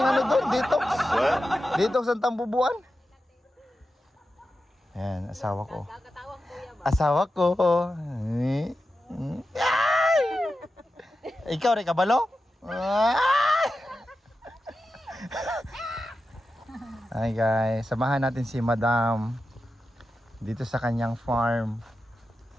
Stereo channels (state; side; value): normal; both; correlation 0.91